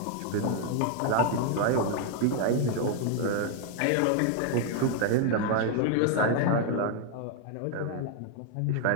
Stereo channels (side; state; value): both; different; correlation 0.00